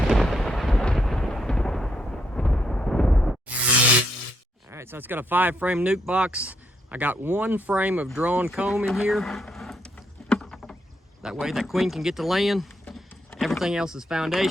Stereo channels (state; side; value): normal; both; correlation 0.76